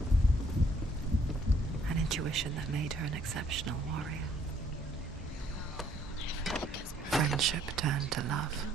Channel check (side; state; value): both; normal; correlation 0.64